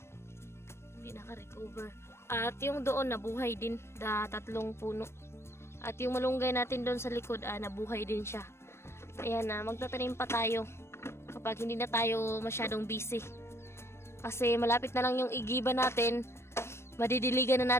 Hindi naka-recover. At yung doon nabuhay din. 3 puno. At yung malunggay natin doon sa likod, nabuhay din siya. Ayan, magtatanim pa tayo kapag hindi na tayo masyadong busy. Kasi malapit na lang yung igiba natin. Madidiligan na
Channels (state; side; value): late; right; 0.12 ms